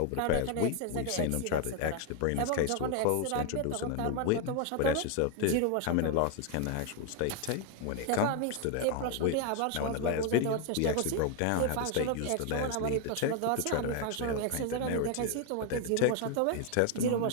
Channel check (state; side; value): different; both; correlation 0.00